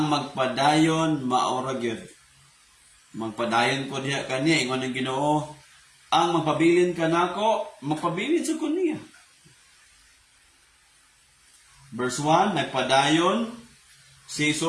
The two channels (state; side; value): identical; both; correlation 1.00